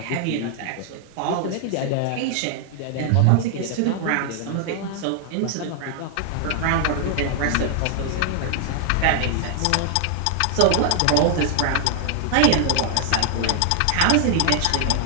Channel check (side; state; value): both; different; correlation 0.00